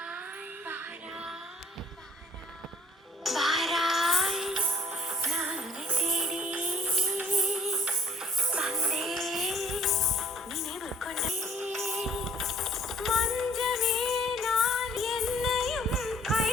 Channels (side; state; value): both; normal; correlation 0.55